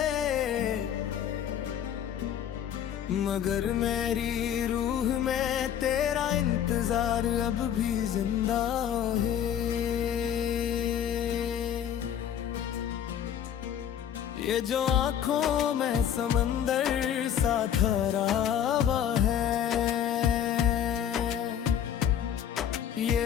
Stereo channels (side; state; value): right; quieter; 9.5 dB